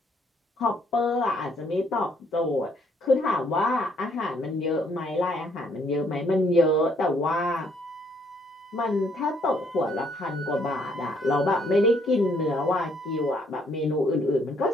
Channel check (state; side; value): normal; both; correlation 0.67